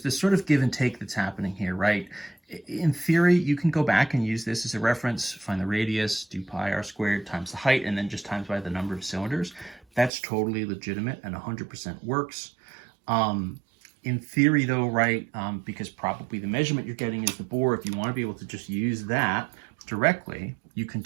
this sort of give and take that's happening here, right? In theory, you can go back and use this as a reference, find the radius, do pi r squared times the height, and then just times by the number of cylinders. That's totally legitimate and 100% works. In theory, though, right, because probably the measurement you're getting is the bore, if you want to be able to just use that directly, you can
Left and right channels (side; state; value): left; drops out; at 10.1 s